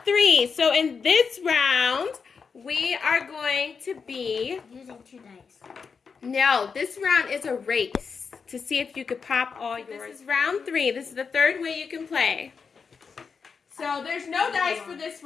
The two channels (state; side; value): quieter; right; 5.6 dB